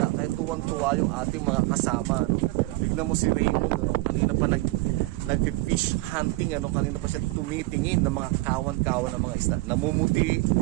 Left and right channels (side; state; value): left; quieter; 21.2 dB